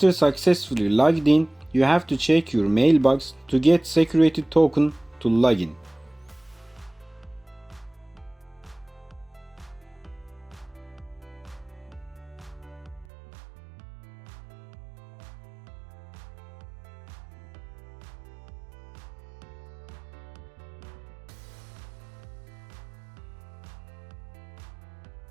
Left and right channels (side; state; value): left; drops out; at 13.1 s